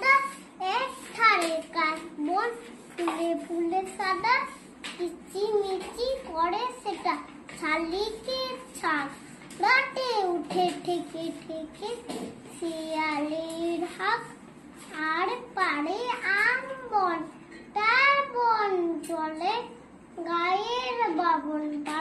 এক ধারে কাশবন ফুলে ফুলে সাদা, কিচিমিচি করে সেটা শালিকের ছাগ, রাতে উঠে ঠেকে ঠেকে শিয়ালের হাঁক। আর পারে আম বন, তার বন চলে গায়ের বাবন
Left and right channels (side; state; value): both; identical; correlation 1.00